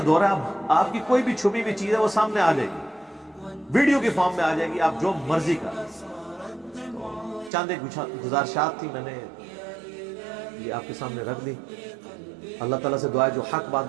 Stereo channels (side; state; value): left; drops out; at 7.5 s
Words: دور ہے. اب آپ کی کوئی بھی چھپی ہوئی چیز ہے وہ سامنے آ جائے گی, ویڈیو کی فارم میں آ جائے گی, آپ جو مرضی کر. چاند ایک گزارشات تھی, میں نے یہ آپ کے سامنے رکھ دی. اللہ تعالیٰ سے دعا ہے جو حق